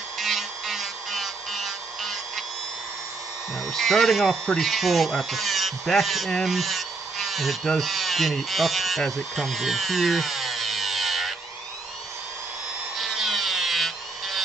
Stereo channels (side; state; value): left; quieter; 3.8 dB